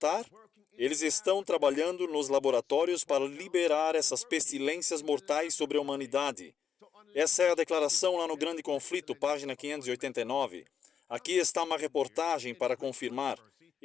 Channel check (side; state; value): right; quieter; 7.5 dB